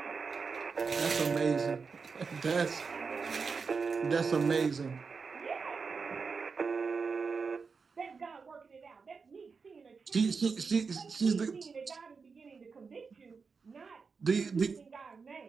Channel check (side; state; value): left; quieter; 5.1 dB